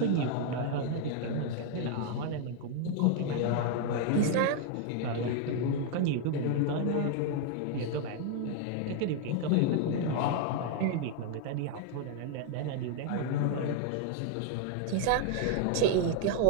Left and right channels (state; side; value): different; both; correlation 0.00